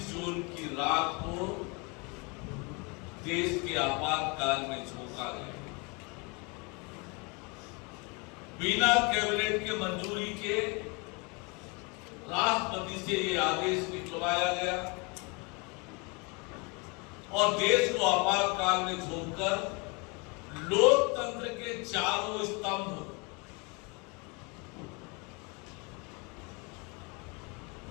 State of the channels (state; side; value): quieter; right; 30.3 dB